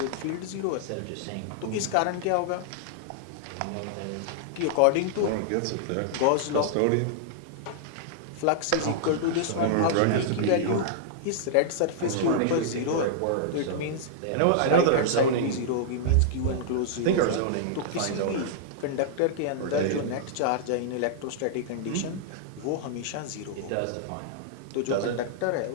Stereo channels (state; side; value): different; both; correlation -0.01